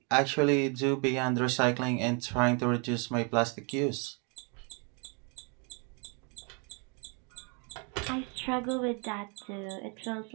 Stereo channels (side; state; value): left; quieter; 35.7 dB